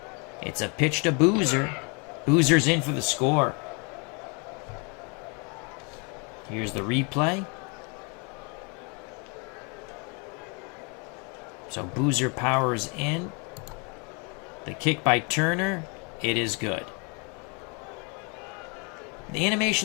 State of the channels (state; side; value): quieter; right; 33.5 dB